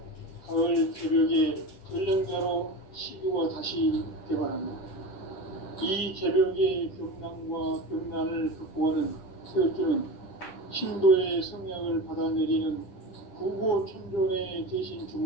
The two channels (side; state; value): right; late; 10 ms